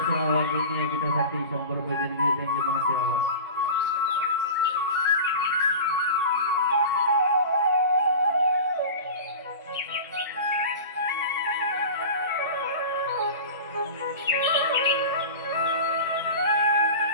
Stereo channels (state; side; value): inverted; both; correlation -0.32